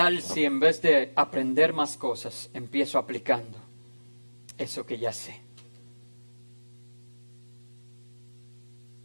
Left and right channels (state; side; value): inverted; both; correlation -1.00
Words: si en vez de aprender más cosas, empiezo aplicando eso que ya sé?